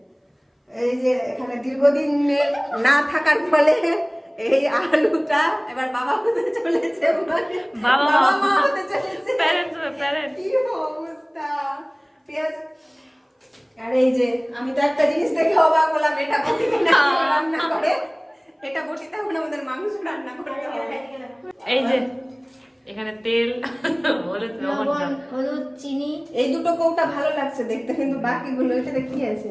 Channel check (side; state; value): both; identical; correlation 1.00